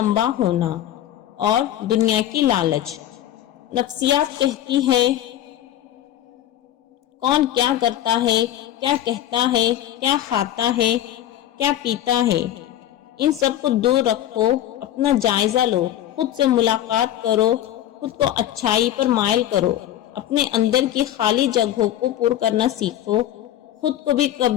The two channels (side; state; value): right; quieter; 12.2 dB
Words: ہونا، اور دنیا کی لالچ۔ نفسیات کہتی ہے کون کیا کرتا ہے، کیا کہتا ہے، کیا کھاتا ہے، کیا پیتا ہے، ان سب کو دور رکھو، اپنا جائزہ لو، خود سے ملاقات کرو، خود کو اچھائی پر مائل کرو، اپنے اندر کی خالی جگہوں کو پر کرنا سیکھو، خود کو بھی